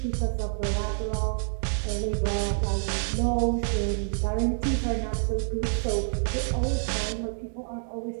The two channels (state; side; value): silent; left; digital silence